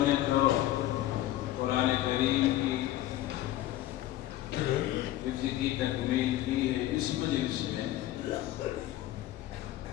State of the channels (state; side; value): quieter; right; 14.5 dB